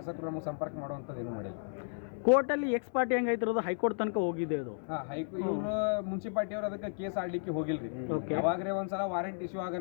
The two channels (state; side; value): silent; right; 56 dB below the other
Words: ನಮಗೆ ಸಂಪರ್ಕ ಮಾಡುವಂಥದ್ದು ಏನು ಮಾಡಿಲ್ಲ. ಕೋರ್ಟಲ್ಲಿ ಎಕ್ಸ್ ಪಾರ್ಟಿ ಹೆಂಗೈತಿರೋದು ಹೈಕೋರ್ಟ್ ತನಕ ಹೋಗಿದೆ. ಅದು ಇವರು ಮುನ್ಸಿಪಾಲ್ಟಿ ಅವ್ರು ಅದಕ್ಕೆ ಕೇಸ್ ಆಡ್ಲಿಕ್ಕೆ ಹೋಗಿಲ್ರಿ. ಯಾವಾಗ್ರೆ ಒಂದ್ಸಲ ವಾರಂಟ್ ಇಶ್ಯೂ